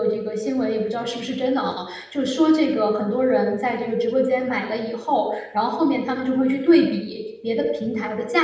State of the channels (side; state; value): both; identical; correlation 1.00